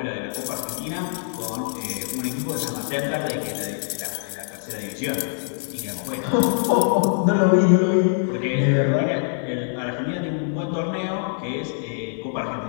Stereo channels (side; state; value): right; silent; digital silence